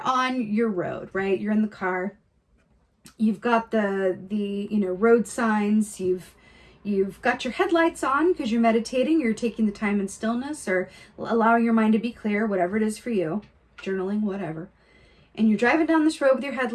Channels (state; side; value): identical; both; correlation 1.00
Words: on your road, right? You're in the car. You've got the road signs. You've got your headlights on because you're meditating. You're taking the time in stillness or allowing your mind to be clear, whatever it is for you, journaling, whatever. And you're driving down this road with your